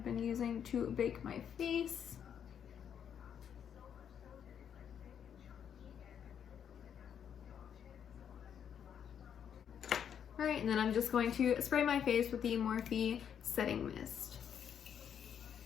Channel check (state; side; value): quieter; right; 8.4 dB